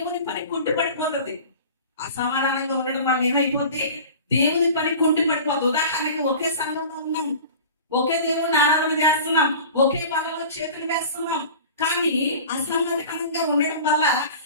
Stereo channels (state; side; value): inverted; both; correlation -0.39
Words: పని కుంటుపడిపోతుంది. అసమాధానంగా ఉండడం వల్ల ఏమైపోతుంది, దేవుని పని కుంటుపడిపోతుంది. ఉదాహరణకి ఒకే సంఘంలో ఉన్నాం, ఒకే దేవుని ఆరాధన చేస్తున్నాం, ఒకే పనుల్లో చేతులు వేస్తున్నాం, కానీ అసమాధానంగా ఉండడం వల్ల